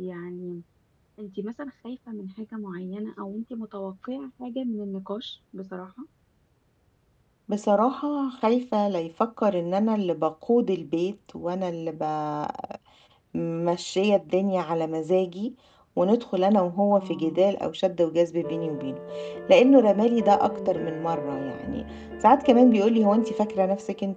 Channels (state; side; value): identical; both; correlation 1.00